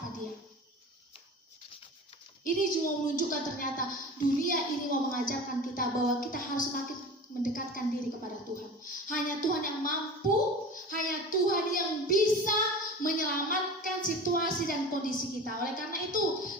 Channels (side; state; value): both; normal; correlation 0.35